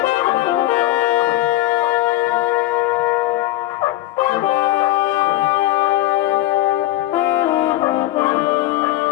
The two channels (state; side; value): quieter; right; 15.6 dB